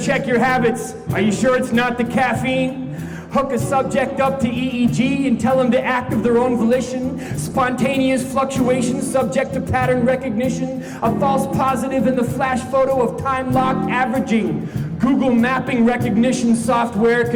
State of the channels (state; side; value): identical; both; correlation 1.00